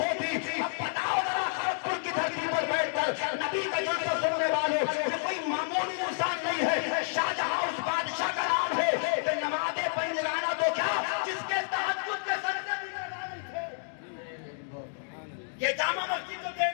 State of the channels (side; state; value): right; silent; digital silence